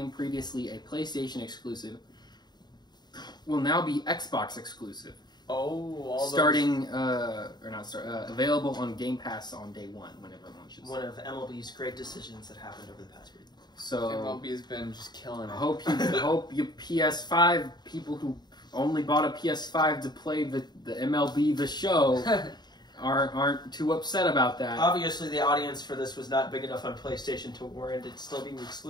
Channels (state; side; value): late; right; 0.20 ms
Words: previously a PlayStation exclusive, will now be Xbox exclusive. Starting available on Game Pass on day one whenever it launches. One of MLB's great decisions that happened over the past week. So MLB has been just killing it. hope you PS5 people who only bought a PS5 to play the MLB the show aren't too upset about that. Obviously, the audience for this was not big enough on PlayStation to warrant it still being